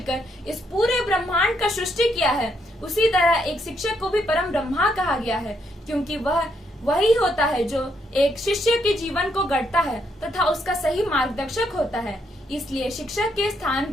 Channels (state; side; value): normal; both; correlation 0.75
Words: इस पूरे ब्रह्मांड का सृष्टि किया है, उसी तरह एक शिक्षक को भी परम ब्रह्मा कहा गया है, क्योंकि वह वही होता है जो एक शिष्य के जीवन को गढ़ता है तथा उसका सही मार्गदर्शक होता है। इसलिए शिक्षक के स्थान